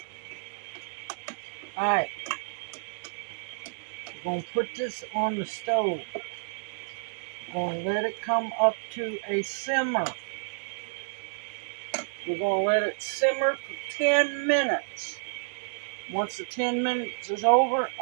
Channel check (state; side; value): silent; left; digital silence